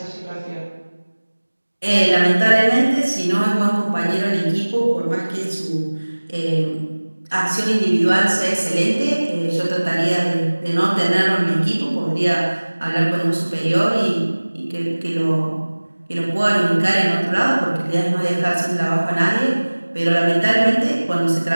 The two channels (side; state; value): both; inverted; correlation -1.00